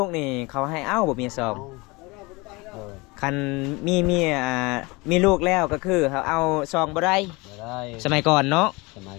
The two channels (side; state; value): right; quieter; 25.1 dB